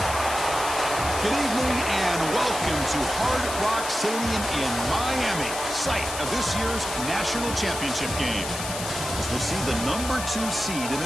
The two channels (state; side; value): noise; left; hiss, 7 dB below the sound